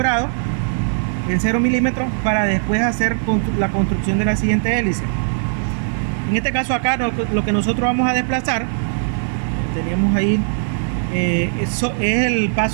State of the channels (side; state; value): left; silent; digital silence